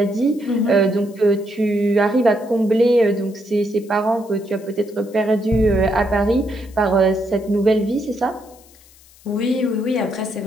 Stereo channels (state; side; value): noise; left; hiss, 26 dB below the sound